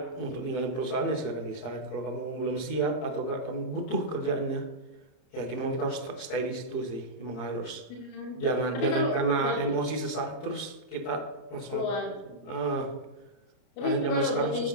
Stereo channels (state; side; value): late; right; 30 ms